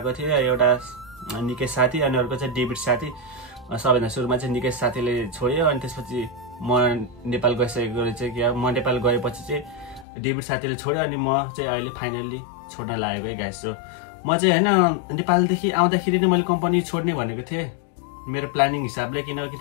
थिए। एउटा निकेश साथी अनि अर्को चाहिँ डेभिड साथी। सबैभन्दा सुरुमा चाहिँ निकेश साथीले छोड्यो अनि त्यसपछि म नेपाल गइसकेको रहेछ कि म नेपाल गएपछि चाहिँ डेभिड साथीले छोड्यो अनि म चाहिँ अहिले फाइनल्ली छोड्न लागेको है गाइस। सो म चाहिँ हैन नेपालदेखि आउँदाखेरि नै मैले कम्पनी छोड्ने भनेको थिएँ मेरो प्लानिङ हिसाबले, किनकि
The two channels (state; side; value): drops out; right; at 10.1 s